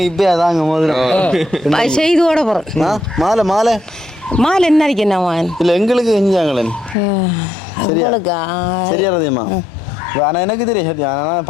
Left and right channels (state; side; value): drops out; right; at 7.0 s